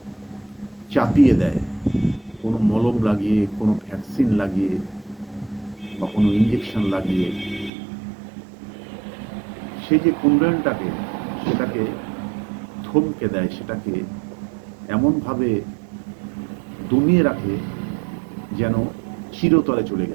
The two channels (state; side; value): drops out; left; at 7.7 s